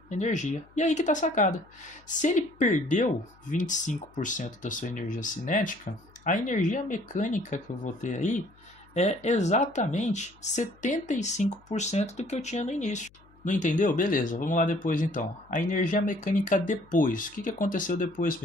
energia. E aí que está a sacada. Se ele perdeu 25% da sua energia cinética, a energia mecânica que eu vou ter aí é exatamente 75% do que eu tinha no início. Não entendeu? Beleza, vamos lá depois então. A energia mecânica depois. O que aconteceu depois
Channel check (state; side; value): noise; left; hum, 28 dB below the sound